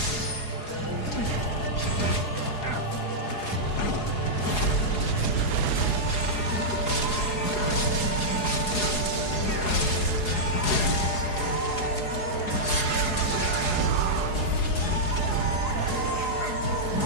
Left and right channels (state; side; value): late; right; 4.8 ms